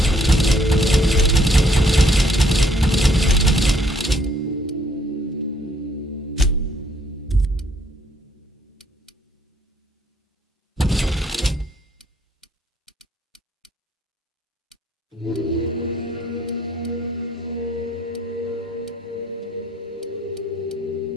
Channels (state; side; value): normal; both; correlation 0.66